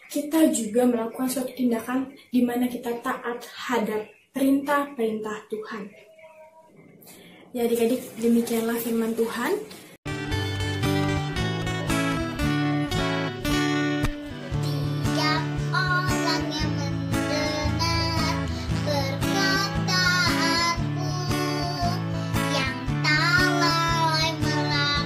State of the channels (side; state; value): both; identical; correlation 1.00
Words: kita juga melakukan suatu tindakan di mana kita taat hadap perintah-perintah Tuhan. Ya adik-adik, demikianlah firman Tuhan. Tiap orang yang mendengar perkataanku, yang tak lalai